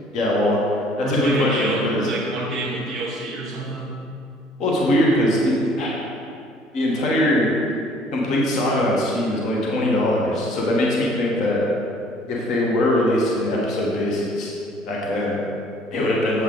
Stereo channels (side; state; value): both; normal; correlation 0.57